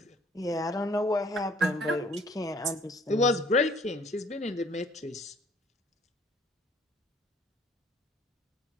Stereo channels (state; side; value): normal; both; correlation 0.57